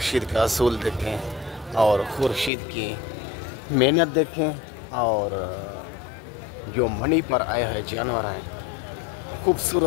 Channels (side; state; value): right; drops out; at 2.5 s